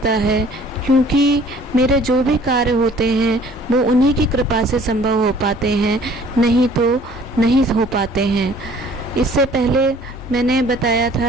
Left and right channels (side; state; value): both; normal; correlation 0.54